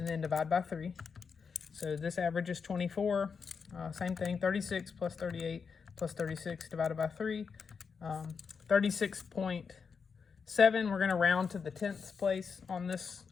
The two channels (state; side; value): quieter; right; 5.8 dB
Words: then divide by 3. So this average is 24. Same thing, 36 plus 38 plus 36 divided by 3. 36.7, we're going to round to the 10th place on this